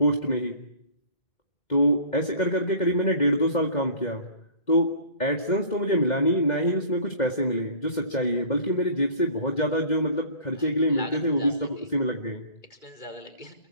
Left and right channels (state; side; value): late; right; 2.1 ms